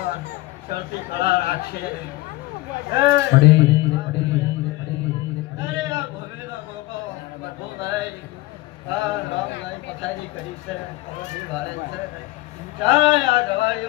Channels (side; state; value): right; quieter; 19.1 dB